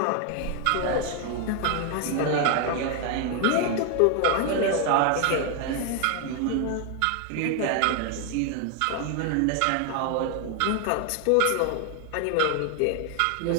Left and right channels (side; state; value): both; different; correlation 0.00